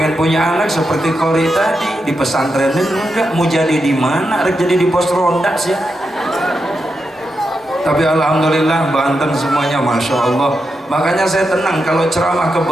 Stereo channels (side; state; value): both; normal; correlation 0.86